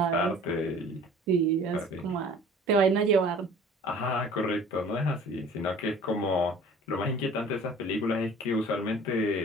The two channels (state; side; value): normal; both; correlation 0.47